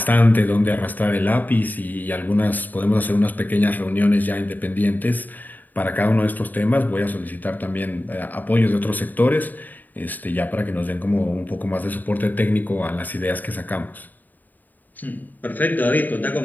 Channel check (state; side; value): late; right; 0.085 ms